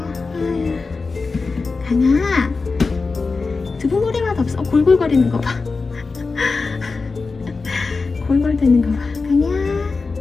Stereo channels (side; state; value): right; quieter; 4.2 dB